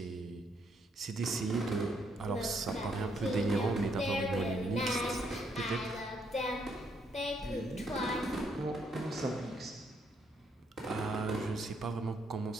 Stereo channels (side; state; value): both; normal; correlation 0.73